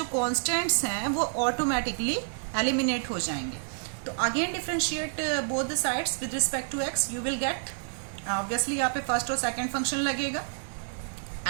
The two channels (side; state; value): left; silent; 59 dB below the other